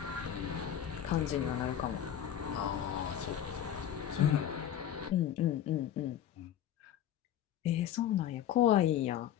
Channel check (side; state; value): right; quieter; 10.3 dB